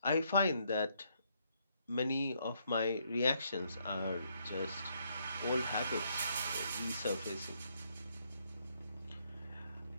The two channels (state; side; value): inverted; both; correlation -0.73